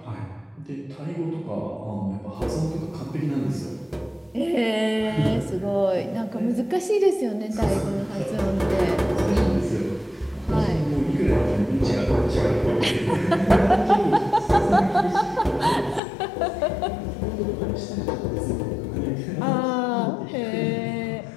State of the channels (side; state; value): right; drops out; at 16.0 s